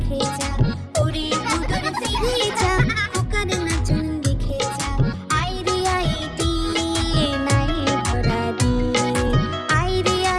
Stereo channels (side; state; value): both; identical; correlation 1.00